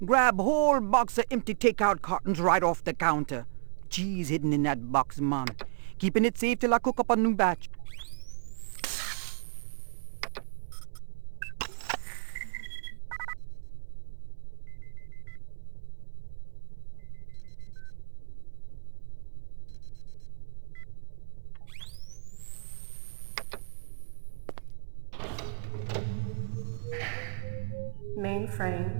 grab whole box of empty takeout cartons right off the counter. Cheese hidden in that box, man. Keeping it safe till I cook up a new batch.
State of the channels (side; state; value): left; silent; 56 dB below the other